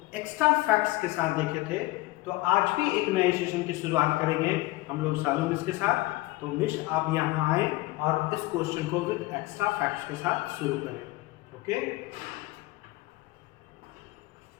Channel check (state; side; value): quieter; right; 19.9 dB